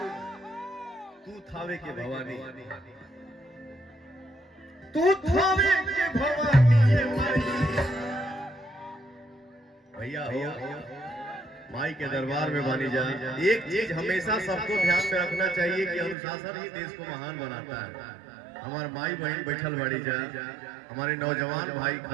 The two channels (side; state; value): left; drops out; at 16.2 s